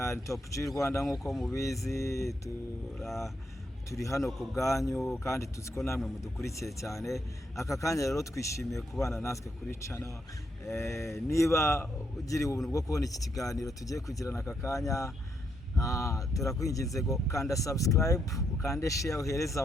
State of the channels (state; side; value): normal; both; correlation 0.78